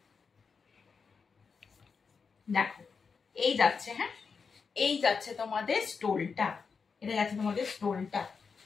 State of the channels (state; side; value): quieter; right; 5.4 dB